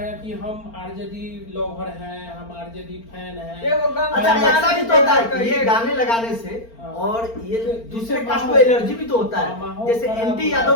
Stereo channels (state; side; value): late; right; 4.4 ms